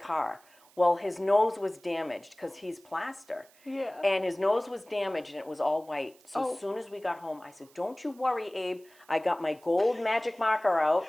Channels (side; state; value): right; noise; hiss, 28 dB below the sound